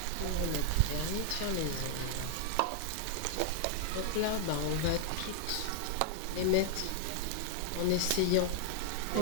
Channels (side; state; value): both; different; correlation 0.00